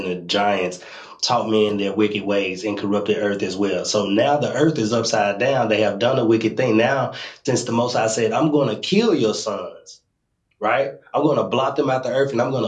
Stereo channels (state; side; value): identical; both; correlation 1.00